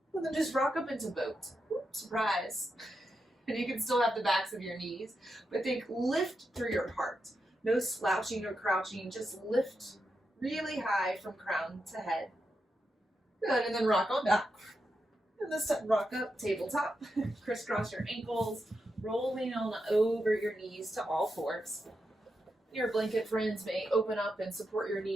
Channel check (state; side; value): normal; both; correlation 0.86